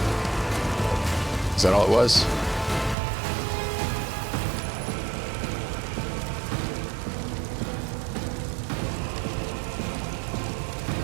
Is that all it was?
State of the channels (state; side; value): drops out; left; at 3.0 s